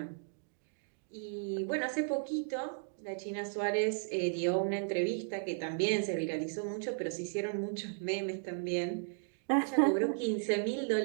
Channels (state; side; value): silent; left; digital silence